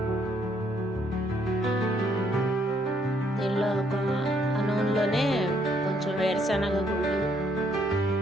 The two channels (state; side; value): normal; both; correlation 0.70